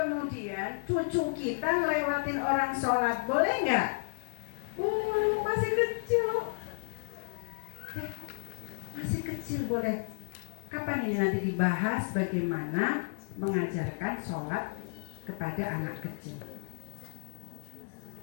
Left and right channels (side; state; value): right; silent; digital silence